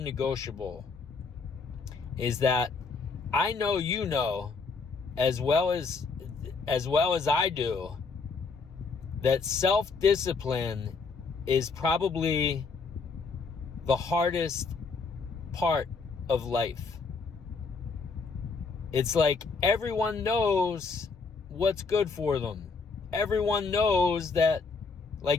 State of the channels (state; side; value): quieter; right; 4.6 dB